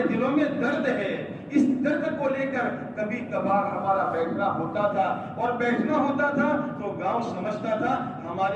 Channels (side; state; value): both; identical; correlation 1.00